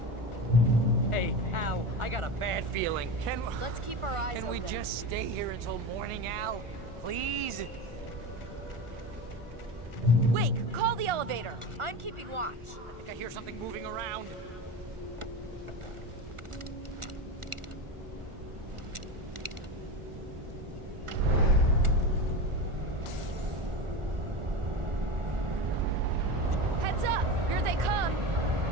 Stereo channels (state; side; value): late; left; 1.4 ms